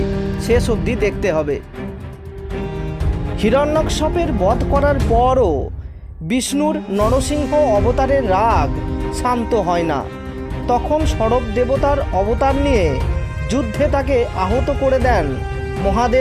শেষ অবধি দেখতে হবে। হিরণ্যকশিপুর বধ করার পরও বিষ্ণুর নরসিংহ অবতারের রাগ শান্ত হয় না। তখন সরব দেবতার অবতার নিয়ে যুদ্ধে তাকে আহত করে দেন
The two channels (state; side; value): identical; both; correlation 1.00